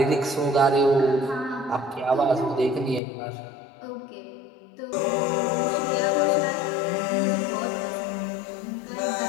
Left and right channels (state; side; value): drops out; right; at 3.0 s